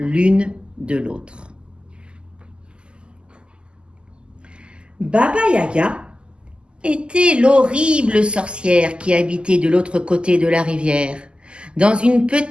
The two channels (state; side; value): late; left; 0.050 ms